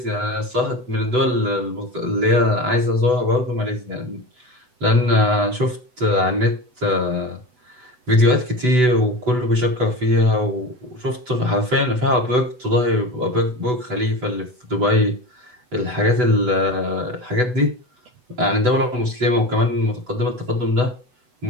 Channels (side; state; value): left; late; 8.0 ms